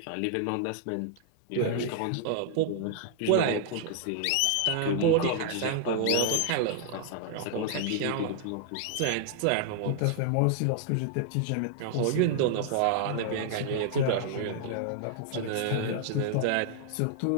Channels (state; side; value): different; both; correlation -0.01